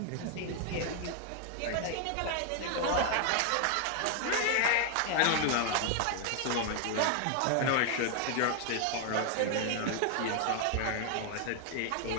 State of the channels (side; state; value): both; different; correlation 0.00